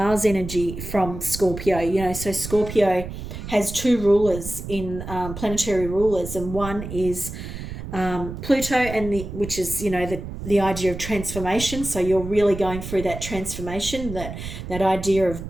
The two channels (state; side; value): noise; right; rumble, 9 dB below the sound